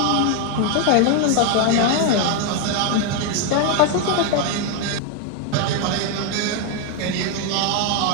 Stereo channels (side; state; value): both; different; correlation 0.01